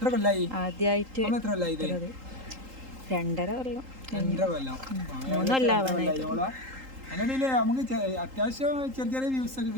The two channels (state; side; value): late; left; 3.8 ms